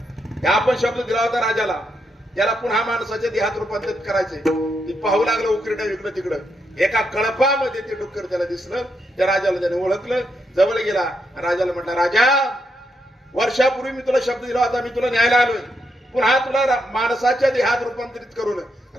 आपण शब्द दिला होता राजाला, याला पुन्हा माणसाच्या देहात रूपांतरित करायचंय. ती पाहू लागलं उकिरड्या इकडं तिकडं. एका कळपामध्ये ते डुक्कर त्याला दिसलं. त्या राजाला त्याने ओळखलं, जवळ गेला. राजाला म्हटला, राजा, वर्षापूर्वी मी तुला शब्द दिला होता, मी तुला न्यायला आलोय. पुन्हा तुला माणसाच्या देहात रूपांतरित करून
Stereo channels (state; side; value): normal; both; correlation 0.80